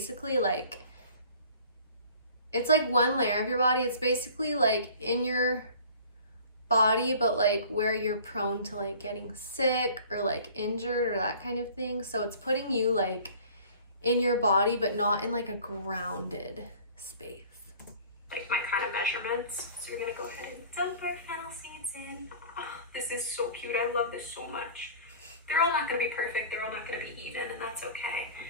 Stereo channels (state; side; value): inverted; both; correlation -0.46